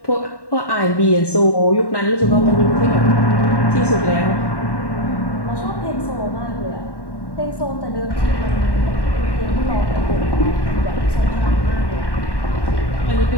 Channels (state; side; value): late; right; 1.1 ms